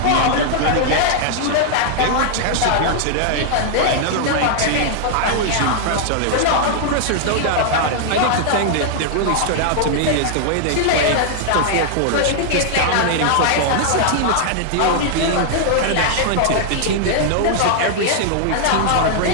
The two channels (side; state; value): both; different; correlation -0.01